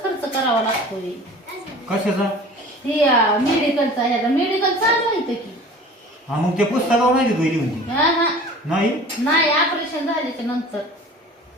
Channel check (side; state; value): both; normal; correlation 0.42